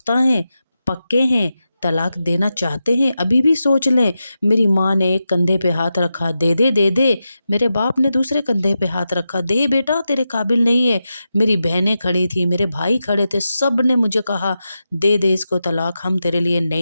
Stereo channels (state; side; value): inverted; both; correlation -0.90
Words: ہیں، پکے ہیں، طلاق دینا چاہتے ہیں؟ ابھی بھی سوچ لیں۔ میری ماں نے ایک کندھے پہ ہاتھ رکھا، دے دے دے دے۔ میرے باپ نے دوسرے کندھے پہ ہاتھ رکھا، دے بیٹا تیرے قابل نہیں ہے۔ میری بہنیں کھڑی تھی، میرے بھائی کھڑے تھے، سب نے مجھے کہا دے دے اس کو طلاق، ہم تیرے لیے